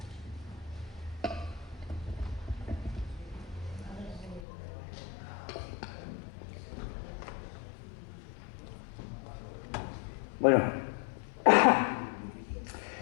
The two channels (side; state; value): right; drops out; at 4.4 s